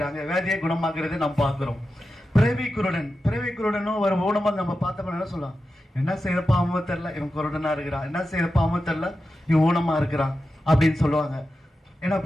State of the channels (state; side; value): normal; both; correlation 0.91